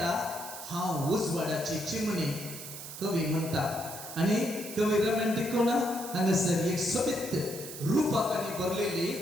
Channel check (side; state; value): right; noise; hiss, 11 dB below the sound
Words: हांव उजवाडाची चिमणी कवी म्हणटा. आणि कवी रोमॅन्टिक कोण हांगासर एक सोबीत रूपाकांनी बरलेली